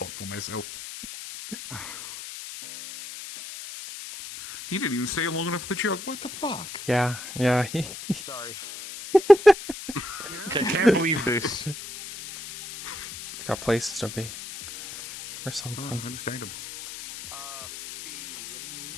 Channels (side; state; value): left; noise; hiss, 11 dB below the sound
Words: for myself. He didn't even stay long enough for the joke. What the fuck? Yeah. Sorry. I can't believe this. Got places to be. Or something. Understandable.